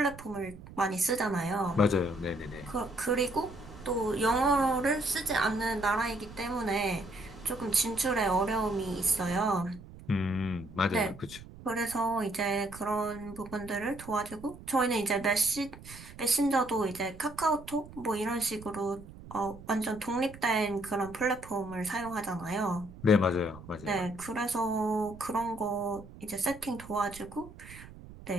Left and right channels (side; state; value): right; noise; rumble, 17 dB below the sound